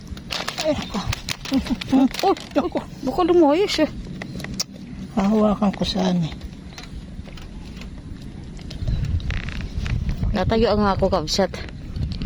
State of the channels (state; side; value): identical; both; correlation 1.00